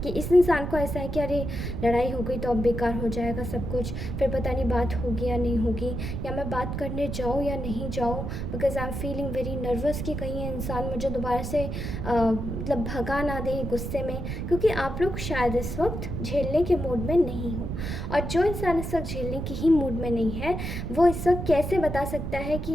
कि इस इंसान को ऐसा है कि अरे लड़ाई हो गई तो अब बेकार हो जाएगा सब कुछ, फिर पता नहीं बात होगी या नहीं होगी, या मैं बात करने जाऊँ या नहीं जाऊँ, because I am feeling very nervous कि कहीं ये इंसान मुझे दोबारा से मतलब भगा ना दे गुस्से में। क्योंकि आप लोग शायद इस वक्त झेलने के मूड में नहीं हो, और जो इंसान इस वक्त झेलने की ही मूड में नहीं है वो इस वक्त कैसे बता सकता है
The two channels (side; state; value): right; noise; rumble, 4 dB below the sound